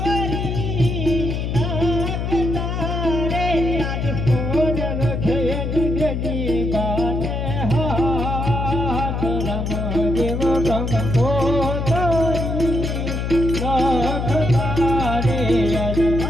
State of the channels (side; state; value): left; noise; hum, 2 dB below the sound